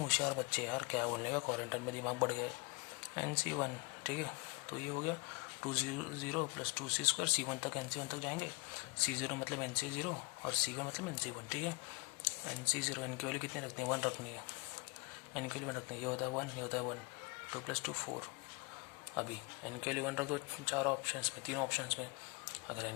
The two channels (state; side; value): quieter; right; 28.3 dB